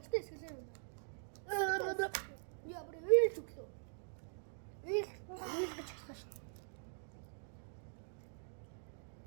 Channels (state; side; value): silent; left; digital silence